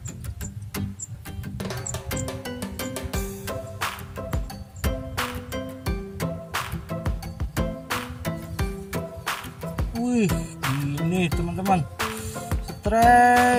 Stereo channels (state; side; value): identical; both; correlation 1.00